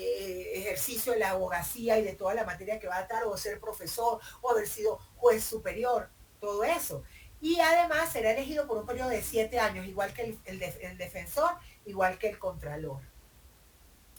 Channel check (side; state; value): both; identical; correlation 1.00